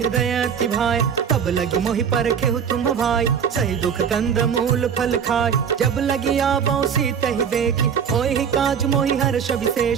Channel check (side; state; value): left; quieter; 7.4 dB